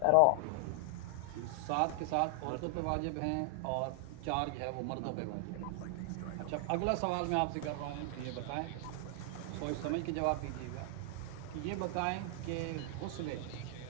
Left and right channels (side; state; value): both; different; correlation 0.00